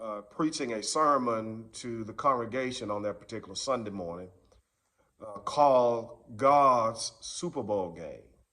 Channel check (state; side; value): identical; both; correlation 1.00